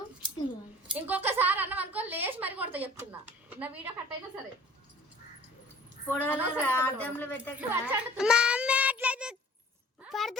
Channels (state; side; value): normal; both; correlation 0.48